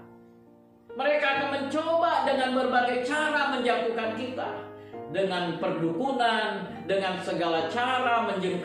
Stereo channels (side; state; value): both; identical; correlation 1.00